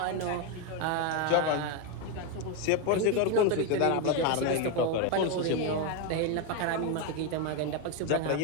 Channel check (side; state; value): both; different; correlation 0.02